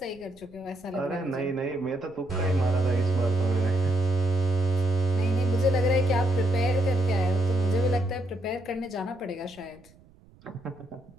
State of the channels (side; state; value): right; noise; rumble, 27 dB below the sound